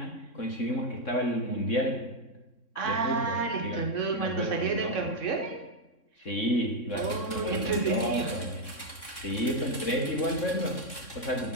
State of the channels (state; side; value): late; right; 3.6 ms